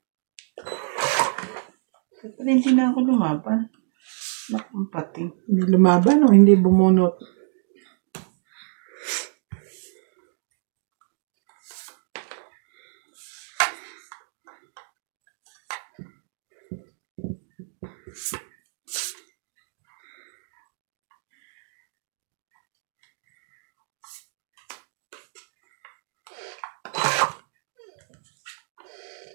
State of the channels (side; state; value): left; silent; digital silence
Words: Ba't pala hindi na ako lumaban? Nakang pating. Hindi lumaban o hindi bumunot?